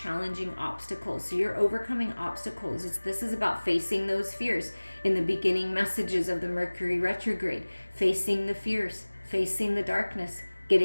obstacles. So you're overcoming obstacles. This is about facing those fears. In the beginning messages of the Mercury Retrograde, facing the fears, facing the darkness,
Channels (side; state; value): both; inverted; correlation -1.00